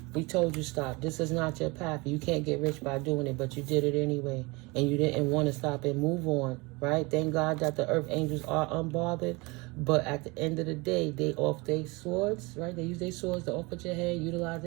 We told you stop. This is not your path. You can't get rich by doing it, but you did it anyway. And you didn't want to stop and move on, right? Thank God that the earth angels are unbothered. But at the end of the day, they off their swords, right? They use their swords to off at your head, utilize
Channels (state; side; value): quieter; left; 25.6 dB